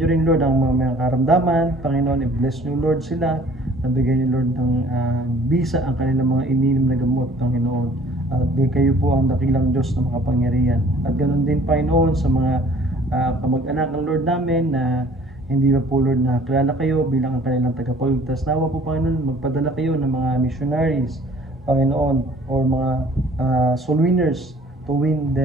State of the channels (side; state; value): both; normal; correlation 0.53